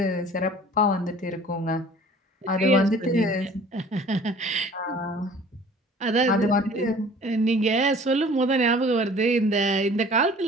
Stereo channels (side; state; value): both; normal; correlation 0.48